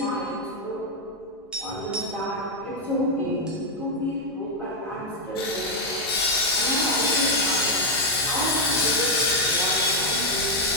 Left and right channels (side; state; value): both; normal; correlation 0.01